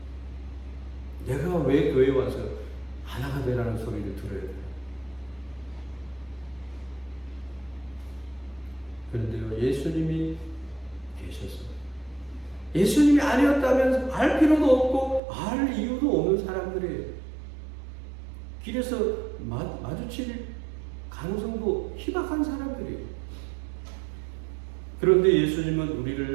내가 왜 교회 와서 하나가 되라는 소리를 들어야 돼요? 그런데요, 예수님이 계셔서, 예수님이 아니었다면 알 필요도 없고 알 이유도 없는 사람들이에요. 길에서 마주칠 가능성도 희박한 사람들이에요. 그런데 예수님은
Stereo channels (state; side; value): drops out; left; at 15.2 s